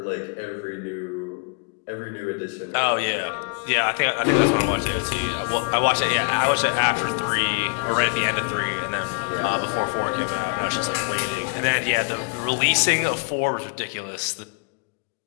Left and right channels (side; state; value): right; quieter; 38.4 dB